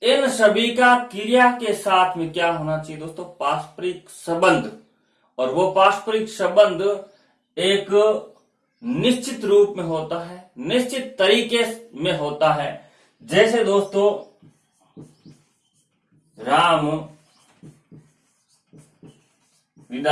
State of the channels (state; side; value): identical; both; correlation 1.00